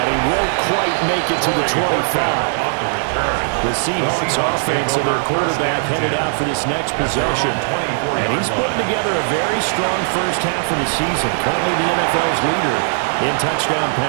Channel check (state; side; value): silent; left; digital silence